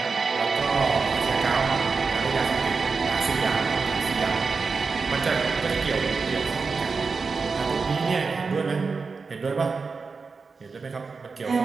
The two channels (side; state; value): left; quieter; 4.7 dB